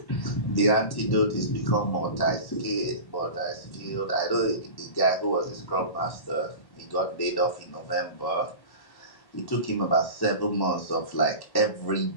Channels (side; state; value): right; late; 1.1 ms